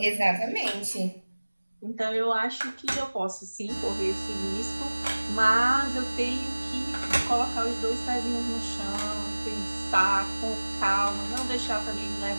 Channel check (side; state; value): both; inverted; correlation -1.00